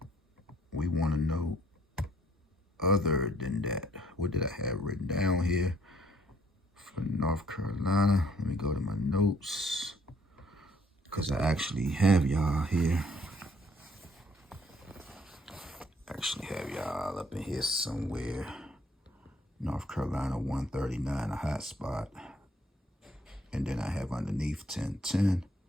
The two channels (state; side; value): normal; both; correlation 0.64